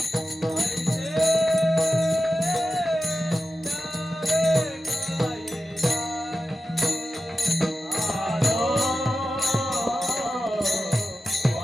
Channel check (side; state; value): both; normal; correlation 0.92